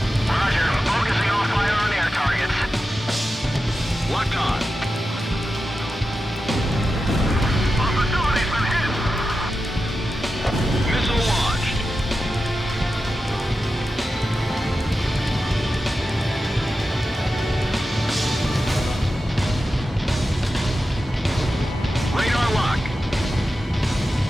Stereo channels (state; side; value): normal; both; correlation 0.91